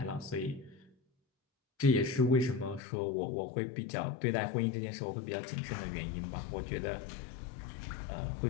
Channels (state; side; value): drops out; right; at 2.8 s